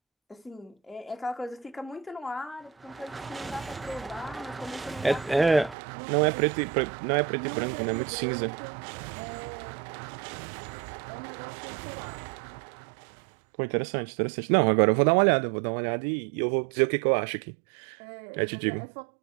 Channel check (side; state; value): left; drops out; at 5.8 s